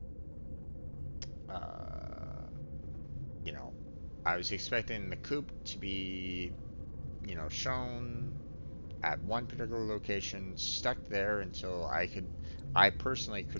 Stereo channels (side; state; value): both; inverted; correlation -1.00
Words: uh, you know, I was expecting the coop to be, shown at one particular location, stuck there until I personally